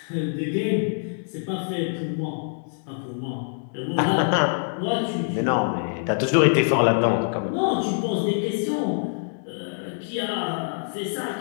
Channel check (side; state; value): right; silent; digital silence